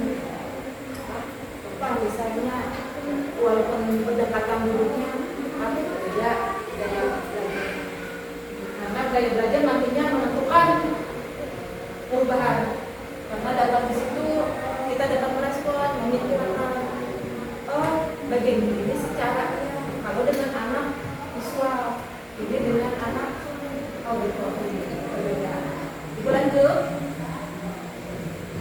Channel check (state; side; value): identical; both; correlation 1.00